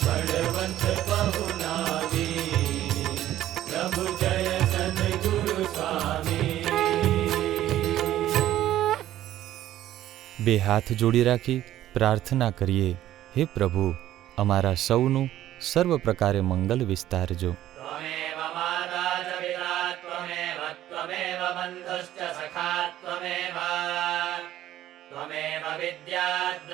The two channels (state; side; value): quieter; left; 13.2 dB